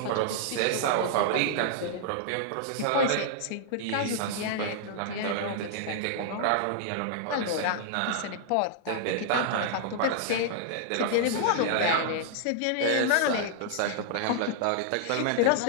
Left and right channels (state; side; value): different; both; correlation -0.01